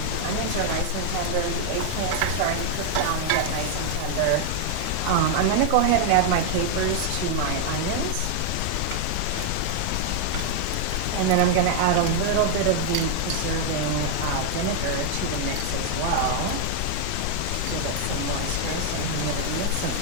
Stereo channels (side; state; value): both; different; correlation 0.00